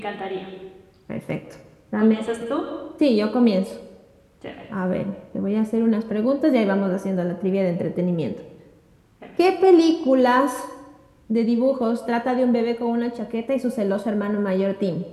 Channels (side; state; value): both; identical; correlation 1.00